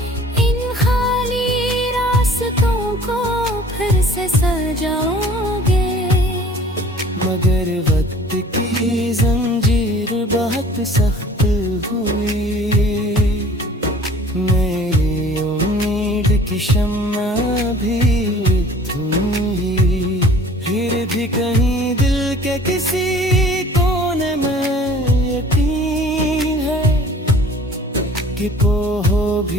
इन खाली रास्तों को फिर से सजाओगे। मगर वक्त की जंजीर बहुत सख्त हुई, मेरी उम्मीद की शम्मा भी धुई। फिर भी कहीं दिल के किसी कोने में यकीन है कि वो हो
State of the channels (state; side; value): normal; both; correlation 0.49